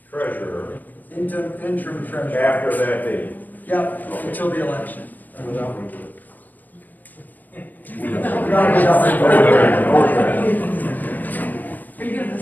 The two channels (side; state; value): right; late; 0.086 ms